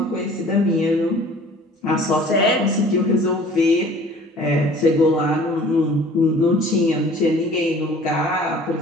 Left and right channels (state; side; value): normal; both; correlation 0.49